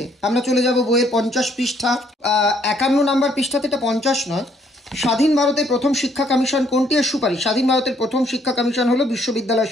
আমরা চলে যাব বইয়ের 50 পৃষ্ঠা, 51 নম্বর পৃষ্ঠাতে, এটা 50 নয়। স্বাধীন ভারতের প্রথম শিক্ষা কমিশন কোনটি এর সুপারিশ? স্বাধীন ভারতের প্রথম শিক্ষা কমিশন হলো বিশ্ববিদ্যালয়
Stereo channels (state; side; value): normal; both; correlation 0.67